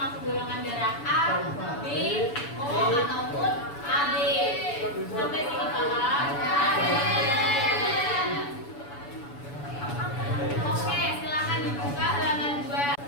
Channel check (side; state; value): right; late; 7.0 ms